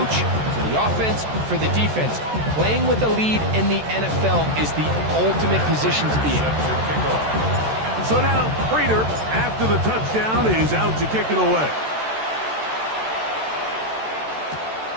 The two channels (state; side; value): late; left; 14 ms